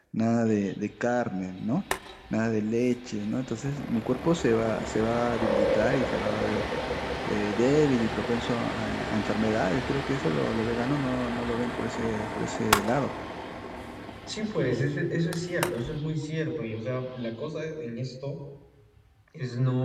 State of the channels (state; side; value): identical; both; correlation 1.00